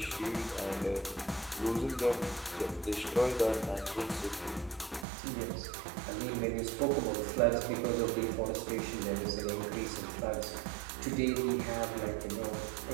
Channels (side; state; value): left; drops out; at 5.1 s